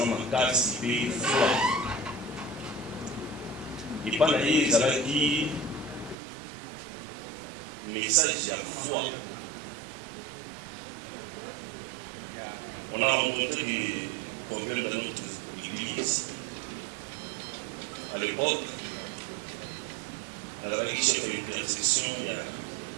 m'a cassé, il foi. Et pas d'ailleurs, ça va dire message à foi. On a rencontré des problèmes dans notre église. À l'époque, dans la chef d'intercession, il y a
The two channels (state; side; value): drops out; left; at 6.2 s